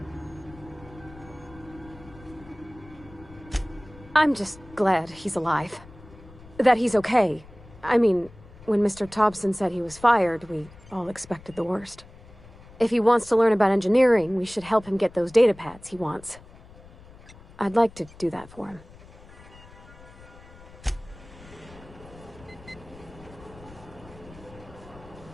I'm just glad he's alive. That he's okay. I mean, when Mr. Thompson said he was fired, we all expected the worst. If he wants to learn about engineering, we should help him get those data pads he wants. I'd like to do that for him.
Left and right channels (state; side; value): noise; left; rumble, 21 dB below the sound